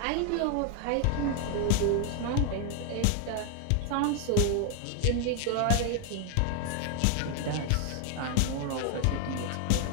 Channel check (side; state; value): both; different; correlation 0.01